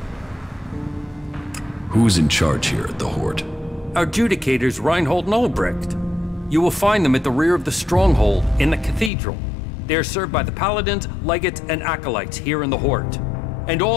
Who's in charge here at the Hort? Our adjudicators, Reinhold and Ulbricht. You will find them at the rear of the stronghold in the cathedral. They are served by the paladins, legates, and acolytes here in the Hort. And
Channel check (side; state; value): right; drops out; at 9.1 s